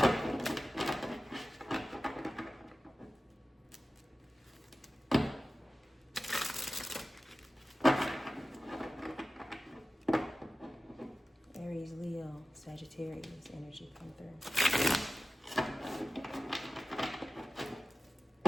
Aries, Leo, Sagittarius energy, come through.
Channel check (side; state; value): both; normal; correlation 0.95